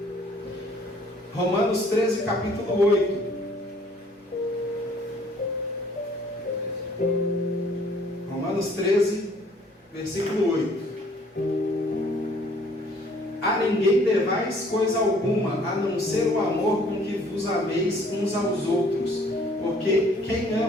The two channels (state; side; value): normal; both; correlation 0.59